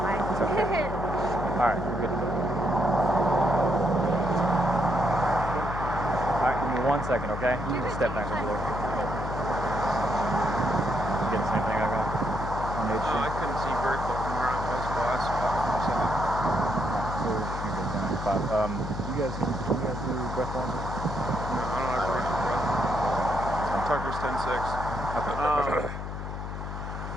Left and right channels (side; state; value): left; noise; hum, 6 dB below the sound